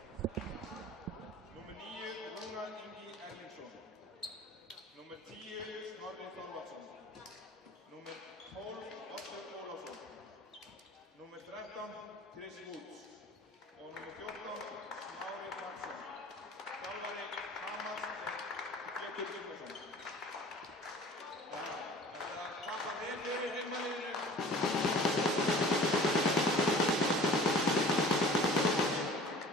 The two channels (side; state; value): both; normal; correlation 0.44